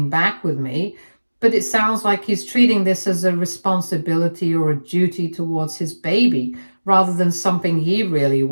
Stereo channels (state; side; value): inverted; both; correlation -1.00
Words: back with me, but it sounds like he's treating this as a responsibility or a duty towards his baby rather than something he really